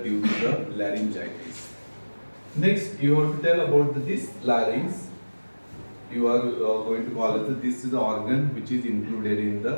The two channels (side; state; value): both; inverted; correlation -1.00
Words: to the laryngitis. Next, you have to tell about this larynx. You are going to call it this is the organ which is included in